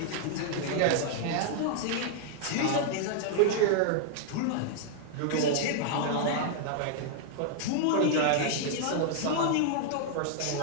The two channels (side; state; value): both; different; correlation -0.01